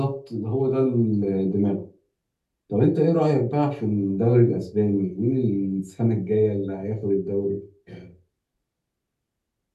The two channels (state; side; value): identical; both; correlation 1.00